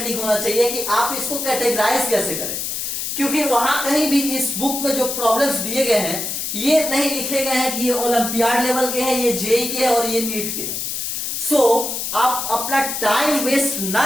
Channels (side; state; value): left; noise; hiss, 3 dB below the sound